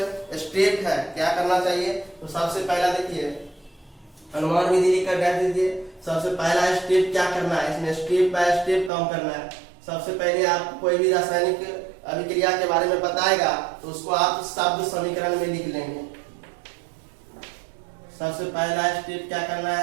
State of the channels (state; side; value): drops out; left; at 8.9 s